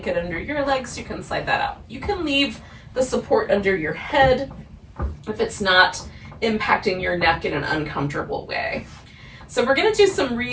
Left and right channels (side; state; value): both; identical; correlation 1.00